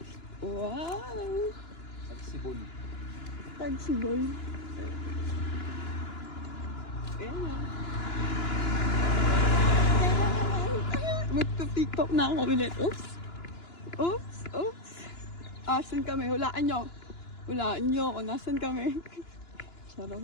Wow! Tagsibol. Tagsibol. Ayan na. Magpa-tiktok na ako ulit. Oops! Oops! Oops! Asan kami? Hulaan nyo. Hulaan nyo kung nasan kami.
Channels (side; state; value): right; late; 2.9 ms